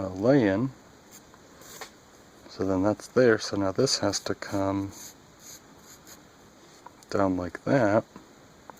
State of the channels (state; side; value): identical; both; correlation 1.00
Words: So then that's there, so now this has to come down like that,